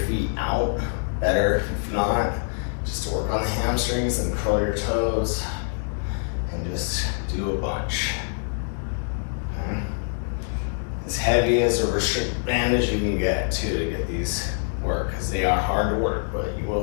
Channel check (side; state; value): right; silent; digital silence